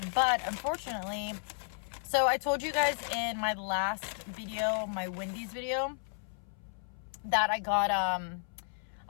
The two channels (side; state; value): right; silent; 56 dB below the other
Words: but unfortunately, so I told you guys in my last video, my Wendy's video, that I got